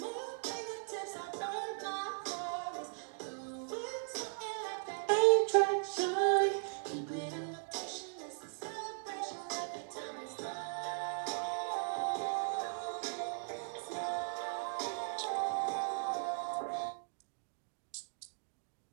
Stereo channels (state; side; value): silent; left; digital silence